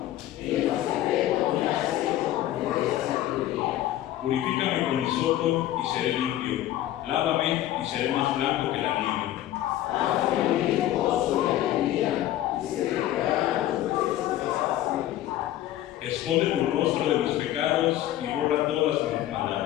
Purifícame con hisopo y seré limpio. Lávame y seré más blanco que la nieve. Esconde tu rostro de mis pecados y borra todas mis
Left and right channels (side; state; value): right; quieter; 13.6 dB